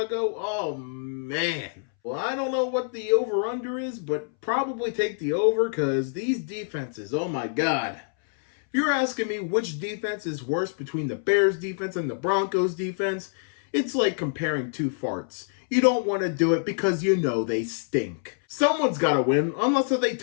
Oh, man. Well, I don't know what the over-under is, but probably take the over because these defenses, oh my God. If you're asking me which defense is worse between the Bears defense and the Broncos defense, it's like comparing two farts. You don't want to do it because you know they stink. Someone's got to win, unless they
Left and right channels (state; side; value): silent; right; 61 dB below the other